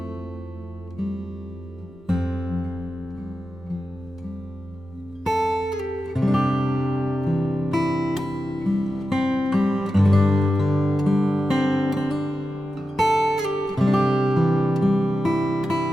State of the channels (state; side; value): normal; both; correlation 0.91